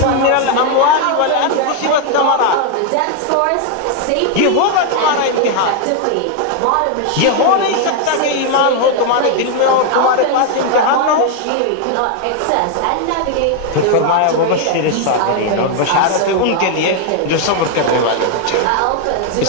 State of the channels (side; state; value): both; different; correlation 0.00